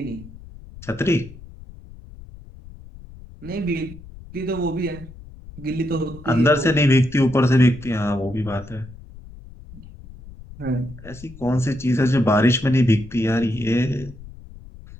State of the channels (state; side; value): noise; left; rumble, 17 dB below the sound